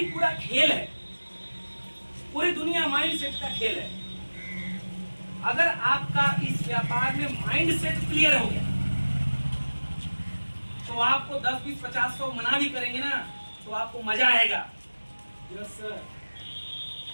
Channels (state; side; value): inverted; both; correlation -1.00